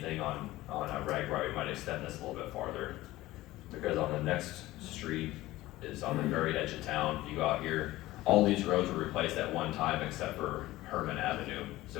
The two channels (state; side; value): quieter; right; 17.2 dB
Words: on Ragbri, we might extend this a little bit farther. Because on the next street is on the very edge of town. If you go out here, all these roads were replaced at one time except for Herman Avenue.